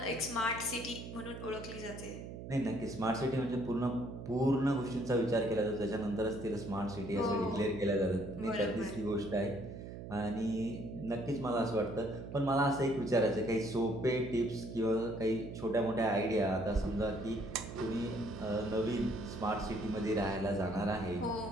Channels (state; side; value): noise; right; hum, 10 dB below the sound